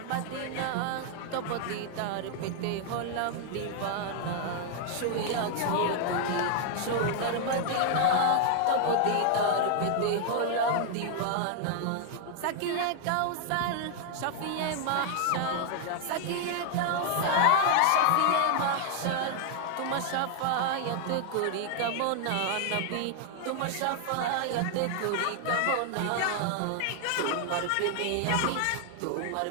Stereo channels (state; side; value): different; both; correlation 0.00